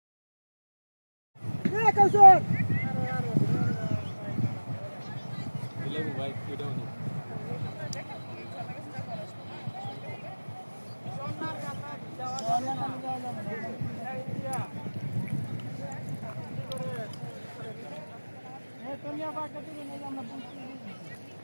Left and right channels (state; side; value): inverted; both; correlation -1.00